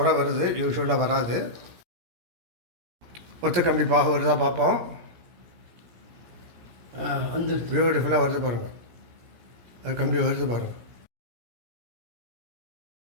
வருது, யூஸ்வலாக வராது. ஒத்த கம்பி பாகு வருதா பார்ப்போம். வந்து பியூட்டிஃபுல்லாக வருது பாருங்கள். அது கம்பி வருது பாருங்கள்.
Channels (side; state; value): left; late; 17 ms